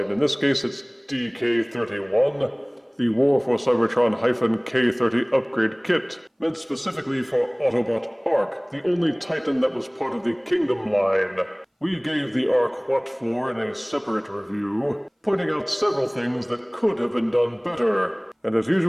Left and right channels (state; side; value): identical; both; correlation 1.00